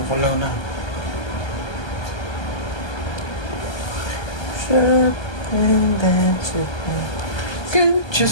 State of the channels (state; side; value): late; right; 1.2 ms